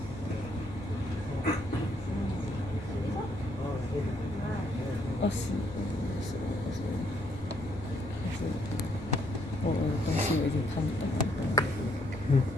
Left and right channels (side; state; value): left; noise; rumble, 14 dB below the sound